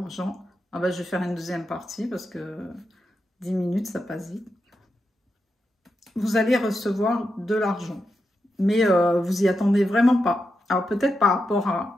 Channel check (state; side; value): normal; both; correlation 0.87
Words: Ah ben, je vais faire une deuxième partie parce que 10 minutes, ça passe vite. vous allez recevoir de l'argent. Mais vous y attendez vraiment pas. Alors peut-être par rapport